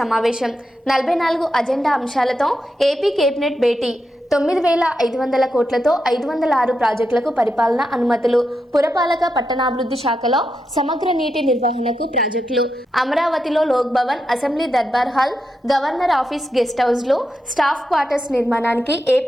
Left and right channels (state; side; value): normal; both; correlation 0.86